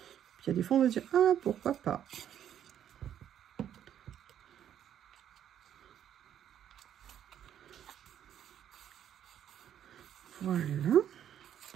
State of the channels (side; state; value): left; quieter; 10.0 dB